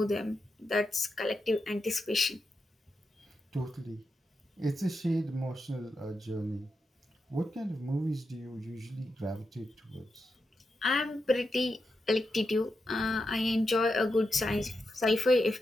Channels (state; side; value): normal; both; correlation 0.87